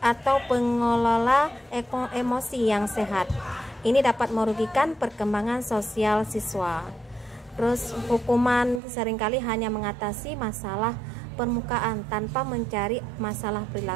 pengelola emosi yang sehat. Ini dapat merugikan perkembangan sosial siswa. Terus hukuman seringkali hanya mengatasi masalah permukaan tanpa mencari masalah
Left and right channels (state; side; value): drops out; left; at 8.8 s